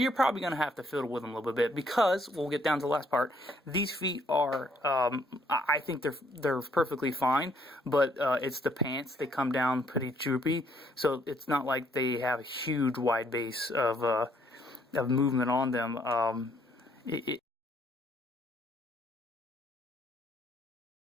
probably going to have to fiddle with him a little bit because, we'll get down to the last part, these feet are, I think they're perfectly fine, but it's the pants. They come down pretty droopy, so it's not like they have a huge wide base of movement on them.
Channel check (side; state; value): both; normal; correlation 0.67